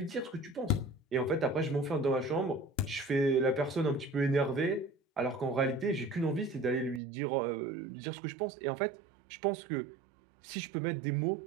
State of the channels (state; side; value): drops out; left; at 7.0 s